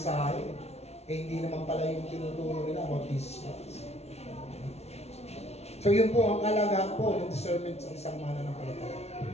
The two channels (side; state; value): right; late; 0.31 ms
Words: eh hindi naman pala yung tinuturo nila about Jesus Christ. So yun po ang kalagahan po ng discernment sa isang mananampalataya.